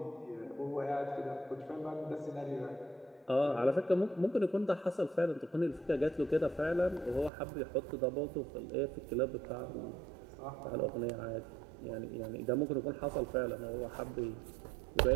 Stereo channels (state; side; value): drops out; left; at 7.3 s